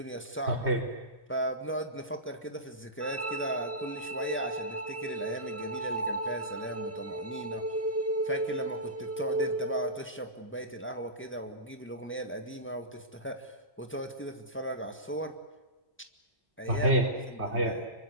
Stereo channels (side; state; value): both; normal; correlation -0.20